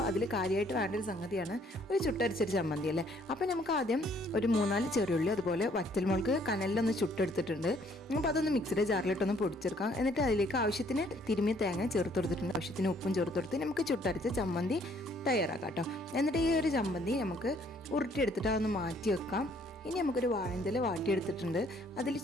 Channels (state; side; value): normal; both; correlation 0.63